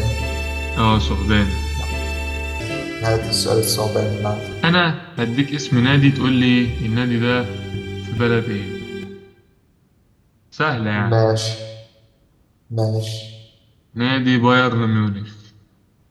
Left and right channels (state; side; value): identical; both; correlation 1.00